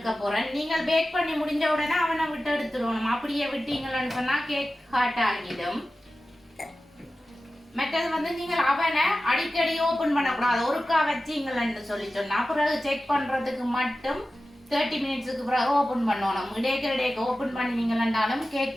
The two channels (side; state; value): both; normal; correlation 0.94